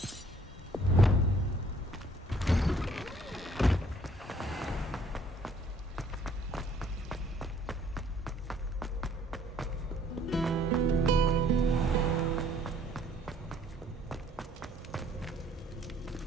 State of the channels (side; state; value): both; normal; correlation 0.61